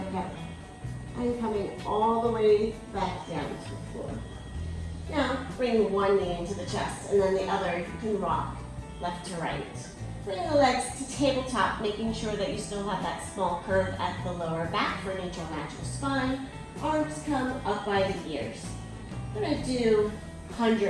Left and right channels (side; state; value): both; identical; correlation 1.00